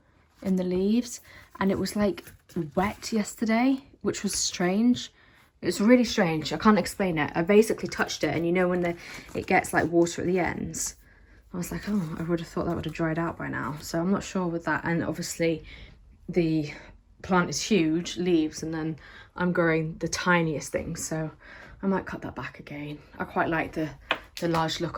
in the leaves, and it was like wet yesterday, which was strange. It's really strange. I can't explain it. I basically touched it, and you know when it gets like water at the ends, I was like, oh, I would have thought that would have dried out by now. So I'm not sure with that. And obviously the plant is huge leaves, and then I'm growing the tiniest things, so I might cut that back again. I quite like the large look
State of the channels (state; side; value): identical; both; correlation 1.00